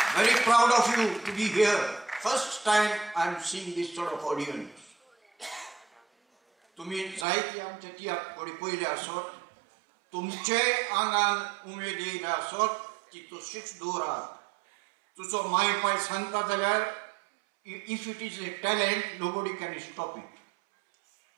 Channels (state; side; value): drops out; left; at 7.2 s